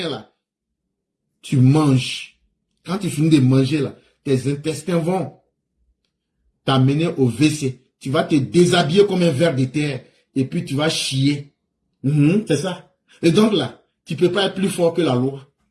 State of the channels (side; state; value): both; identical; correlation 1.00